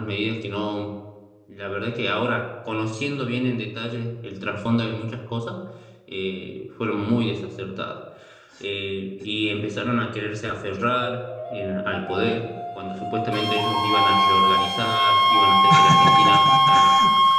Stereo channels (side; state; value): both; identical; correlation 1.00